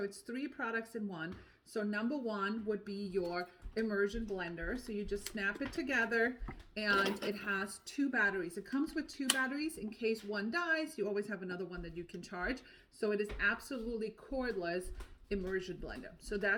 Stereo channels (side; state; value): both; identical; correlation 1.00